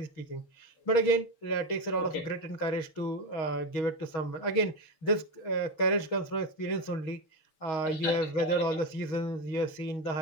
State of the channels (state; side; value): late; right; 6.3 ms